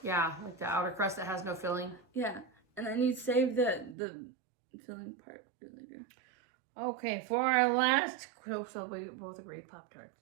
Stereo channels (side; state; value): left; drops out; at 4.0 s